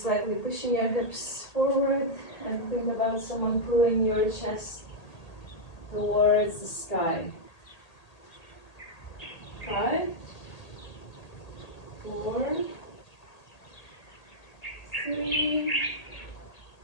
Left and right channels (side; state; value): right; late; 1.8 ms